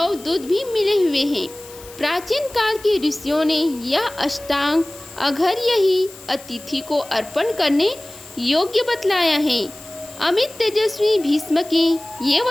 दूध भी मिले हुए हैं। प्राचीन काल के ऋषियों ने यह अष्टांग अघर्य ही अतिथि को अर्पण करने योग्य बतलाया है। अमित तेजस्वी भीष्म के ये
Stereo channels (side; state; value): left; noise; hiss, 19 dB below the sound